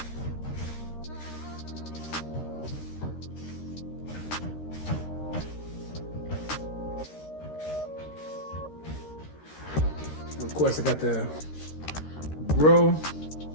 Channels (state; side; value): late; right; 13 ms